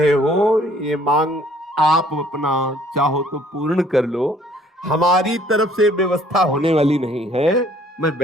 हो, ये मांग आप अपना चाहो तो पूर्ण कर लो, हमारी तरफ से व्यवस्था होने वाली नहीं है, मैं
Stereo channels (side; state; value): both; normal; correlation 0.59